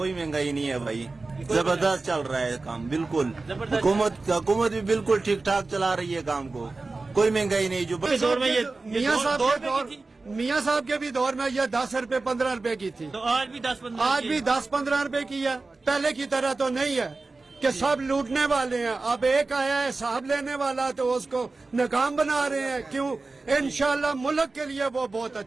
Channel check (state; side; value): quieter; left; 3.6 dB